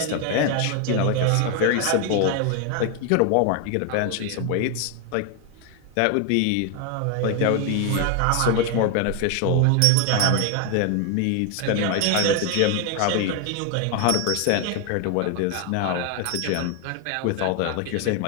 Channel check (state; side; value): different; both; correlation 0.01